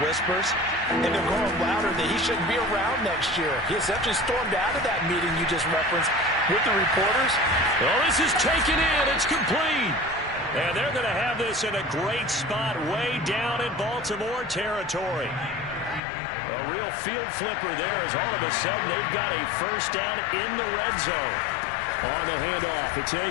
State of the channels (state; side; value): drops out; right; at 16.0 s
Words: and they're going louder that he shouldn't be around next year. He essentially stormed out of that meeting you just referenced with the reporters. Well, this is taken in. It's complete. And they're going to have this in a great spot way down in Baltimore territory. A real field flipper there as all of a sudden they've got a first down in the red zone. On the handoff, it's